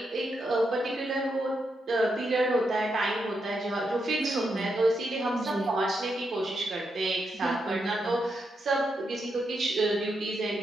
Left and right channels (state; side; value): normal; both; correlation 0.83